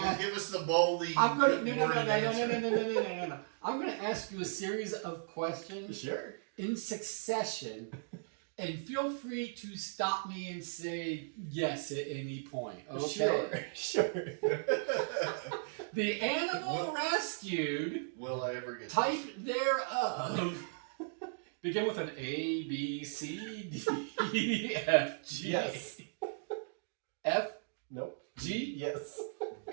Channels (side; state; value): left; silent; digital silence